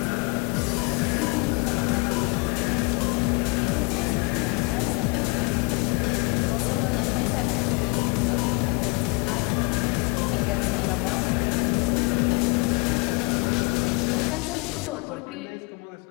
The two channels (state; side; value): quieter; right; 29.6 dB